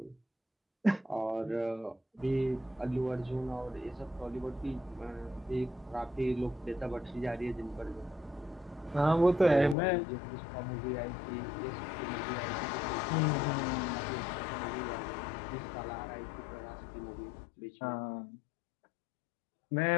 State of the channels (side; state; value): right; drops out; at 9.8 s